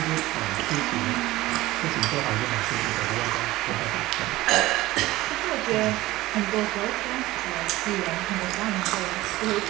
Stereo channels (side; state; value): left; quieter; 17.7 dB